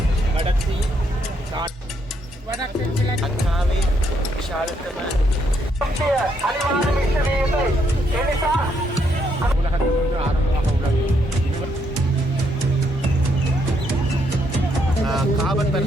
கடத்தி அக்காவை விஷாலத்தம உலகத்திலிருந்து ஆரம்பமாக உள்ளது. காவல்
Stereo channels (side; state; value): both; normal; correlation 0.74